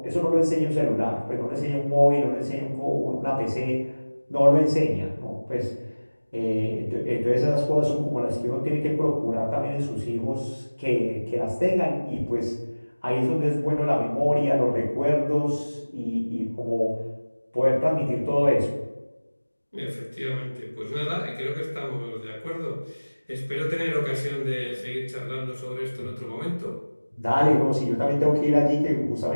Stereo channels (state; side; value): inverted; both; correlation -1.00